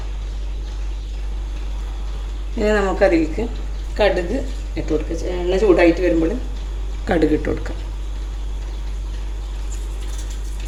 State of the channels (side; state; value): both; identical; correlation 1.00